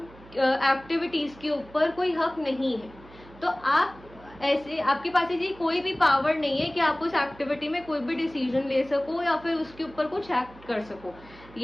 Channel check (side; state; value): right; noise; hum, 22 dB below the sound